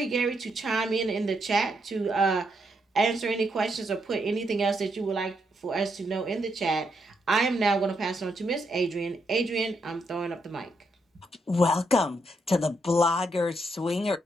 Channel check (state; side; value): normal; both; correlation 0.79